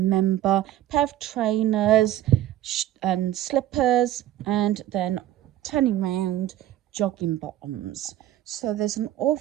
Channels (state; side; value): quieter; left; 13.4 dB